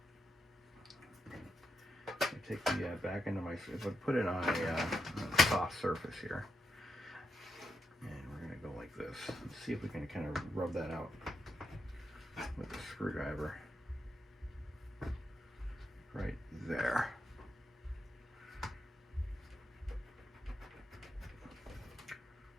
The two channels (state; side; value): normal; both; correlation 0.83